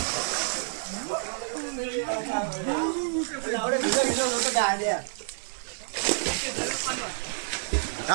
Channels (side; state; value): left; silent; 59 dB below the other